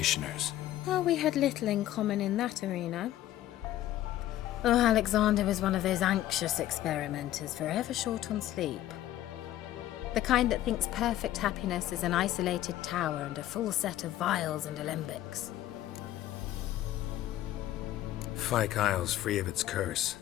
Well, we had little in common in that arena. Oh, Alexander was one of those anxious experimenters, forever short on sleep. The kind that thinks perfect happiness is an isolated tower and a full set of vials and alembics. Fyke Isle's free of its curse.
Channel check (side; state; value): right; quieter; 13.6 dB